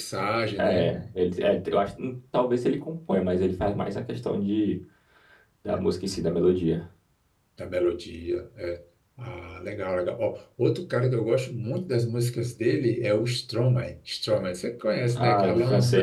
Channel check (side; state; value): both; identical; correlation 1.00